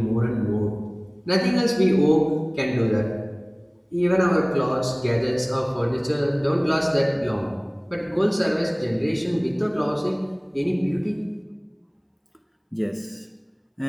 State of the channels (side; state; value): both; identical; correlation 1.00